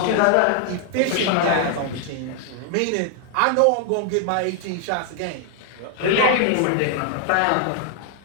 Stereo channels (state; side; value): different; both; correlation 0.00